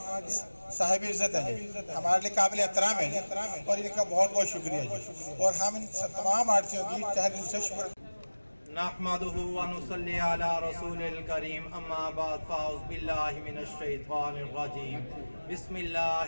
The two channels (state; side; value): inverted; both; correlation -1.00